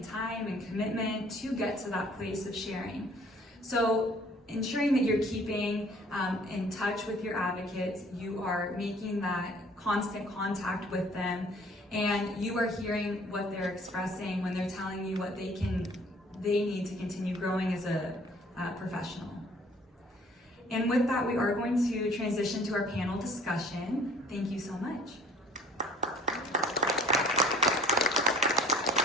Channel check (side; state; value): both; normal; correlation 0.53